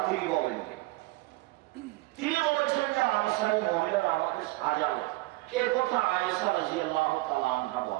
তিনি বলেন। আনসারী মহিলারা আমাকে সাজালো, এ কথা আয়েশা রাদিয়াল্লাহু তাআলা আনহা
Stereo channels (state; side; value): quieter; left; 20.6 dB